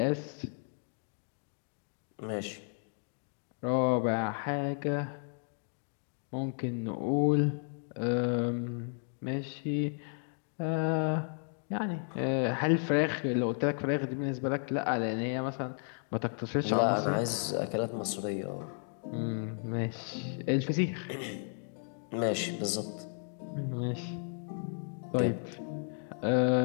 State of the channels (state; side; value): silent; right; 55 dB below the other